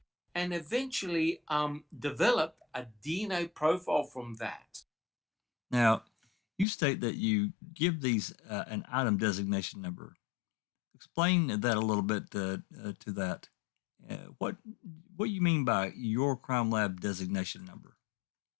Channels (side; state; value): right; drops out; at 6.7 s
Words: and eventually developed a DNA profile from that. Now, you state that you give these an item designation number. Explain that a little bit to that. What you mean by your crime lab designation number?